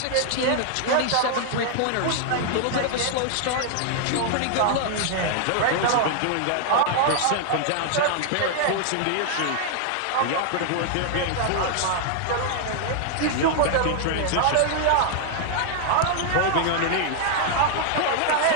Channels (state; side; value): different; both; correlation 0.00